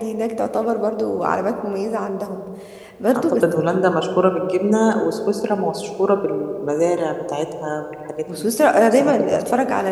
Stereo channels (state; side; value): identical; both; correlation 1.00